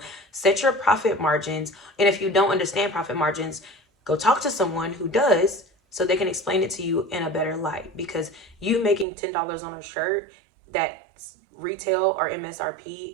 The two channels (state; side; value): drops out; left; at 9.1 s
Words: set your profit margins. And if you don't understand profit margins, go talk to someone who does so they can explain it to you in a better light. Because you making $10 on a shirt that retail or MSRP